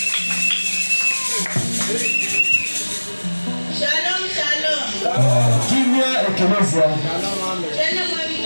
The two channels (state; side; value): inverted; both; correlation -1.00